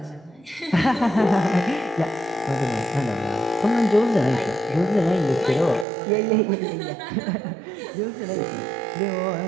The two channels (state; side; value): drops out; left; at 5.9 s